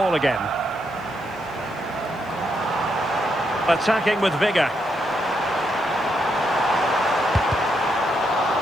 again. Attacking with vigour.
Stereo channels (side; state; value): left; noise; hiss, 29 dB below the sound